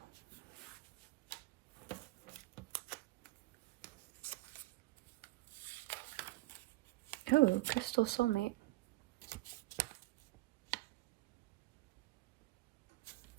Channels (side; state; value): left; quieter; 19.2 dB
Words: Oh, crystal soulmate.